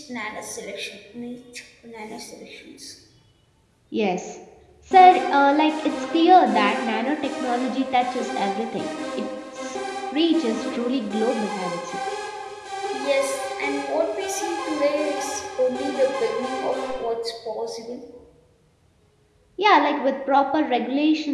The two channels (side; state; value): both; identical; correlation 1.00